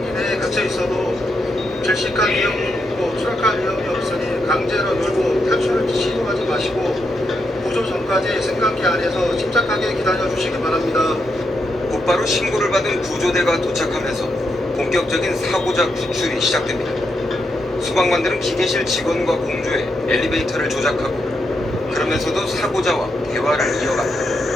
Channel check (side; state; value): both; normal; correlation 0.82